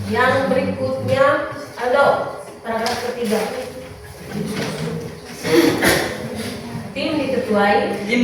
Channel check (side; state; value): both; identical; correlation 1.00